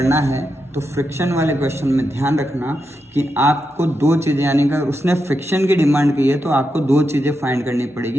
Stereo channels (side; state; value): both; normal; correlation 0.86